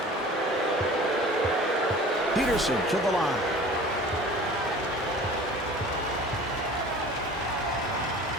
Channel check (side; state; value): both; normal; correlation 0.43